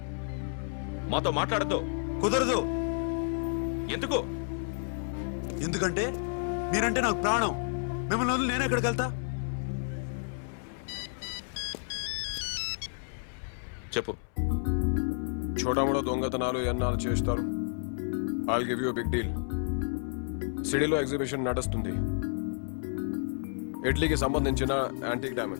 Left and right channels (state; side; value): silent; right; 57 dB below the other